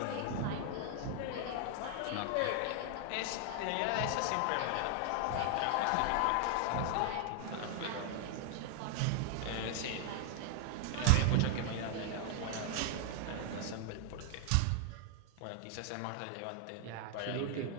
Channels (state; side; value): different; both; correlation 0.00